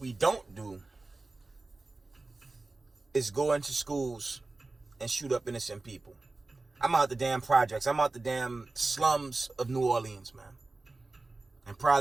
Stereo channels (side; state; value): left; quieter; 3.3 dB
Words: don't do is go into schools and shoot up innocent people. I'm out the damn projects. I'm out the damn slums of New Orleans, man. And